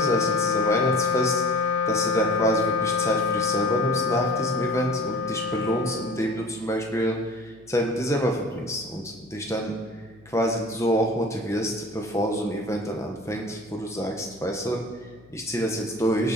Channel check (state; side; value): noise; left; hum, 26 dB below the sound